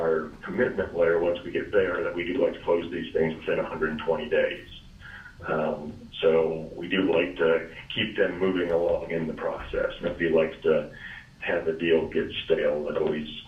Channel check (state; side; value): identical; both; correlation 1.00